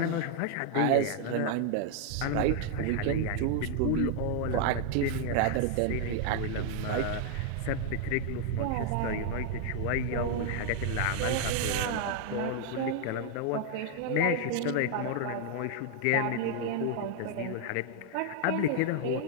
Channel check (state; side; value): different; both; correlation 0.00